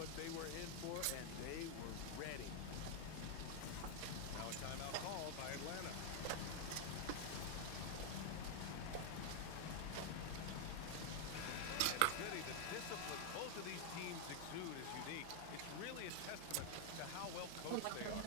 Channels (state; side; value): different; both; correlation 0.00